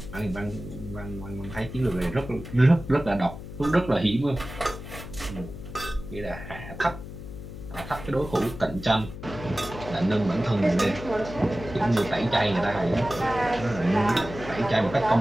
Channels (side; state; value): left; noise; hum, 11 dB below the sound